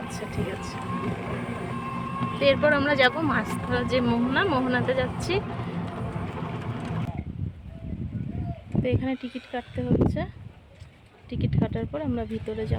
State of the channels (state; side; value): identical; both; correlation 1.00